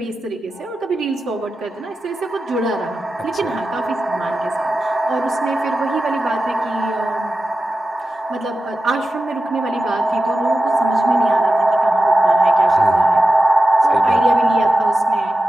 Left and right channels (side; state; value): both; normal; correlation 0.92